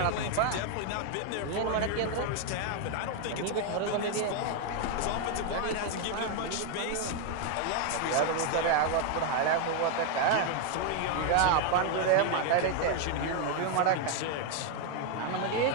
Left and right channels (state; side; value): different; both; correlation 0.01